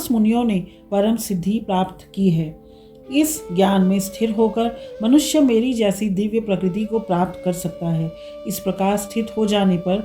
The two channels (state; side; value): identical; both; correlation 1.00